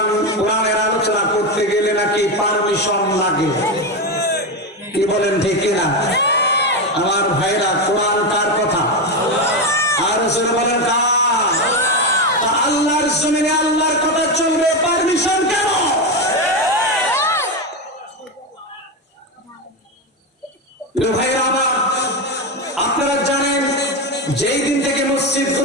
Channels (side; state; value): both; normal; correlation 0.13